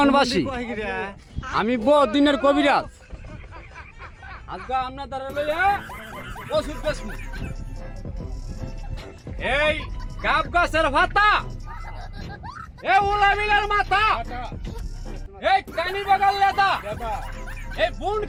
আমি বহুত দিনের কবিরাজ আজকে আপনার দ্বারা লইয়া ওষুধ বেচমু এই গাব গাছের ভাতা এই উলাবিলের মাথা এই কানি বাগাল লেদা এই বুন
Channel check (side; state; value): both; identical; correlation 1.00